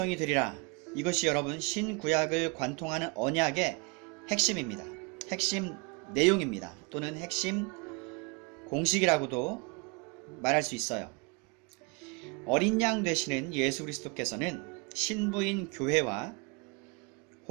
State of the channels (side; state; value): left; quieter; 30.2 dB